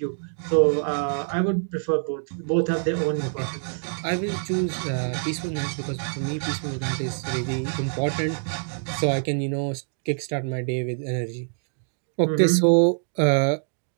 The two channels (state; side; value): silent; left; digital silence